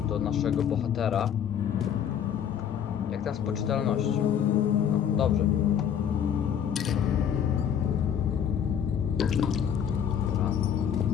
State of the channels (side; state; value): right; quieter; 8.7 dB